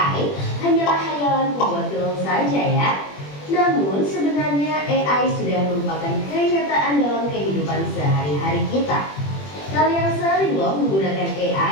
hanyalah hayalan pembuat film saja ya. Namun sebenarnya AI sudah merupakan kenyataan dalam kehidupan sehari-hari kita. Kalian sering loh menggunakan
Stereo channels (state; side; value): late; right; 21 ms